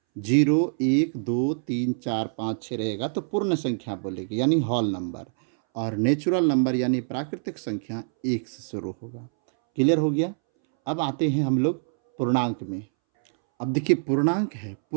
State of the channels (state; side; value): silent; left; 62 dB below the other